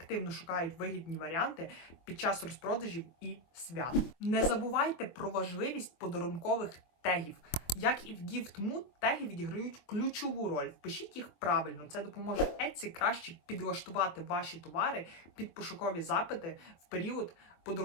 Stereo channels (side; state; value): right; late; 24 ms